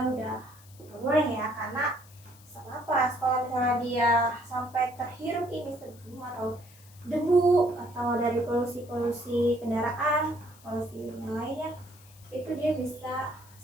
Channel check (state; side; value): noise; left; hiss, 24 dB below the sound